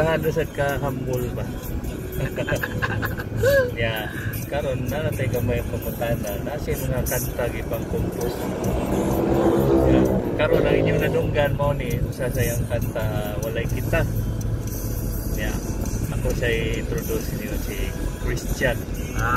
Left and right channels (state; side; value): identical; both; correlation 1.00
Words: na sad ka humble ba. Ya, karon na natay gamay pamutana, nasi mga kanta gipang compose. Ya, karon ang inyong nadunggan mo ni usa sa yang kanta Walay Kita. Ya, ako siya introduce niyo si Christian.